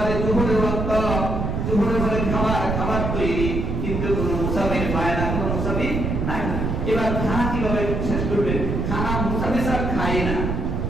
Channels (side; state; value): right; noise; rumble, 1 dB below the sound